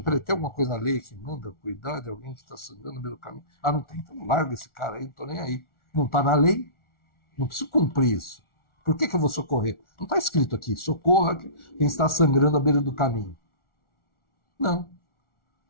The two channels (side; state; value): right; late; 1.4 ms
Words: Peraí, tem alguma coisa na lei que manda cuidar de alguém que está sangrando na beira do caminho? Ah, não tem, então larga esse cara aí, não estou nem aí. Não está na lei, não preciso cumprir isso. Por que eu vou socorrer? Não está escrito aqui, socorra quem está sangrando à beira do caminho. Não.